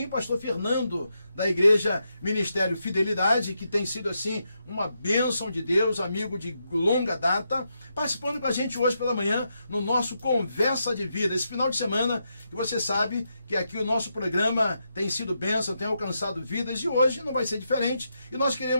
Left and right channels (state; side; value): inverted; both; correlation -0.83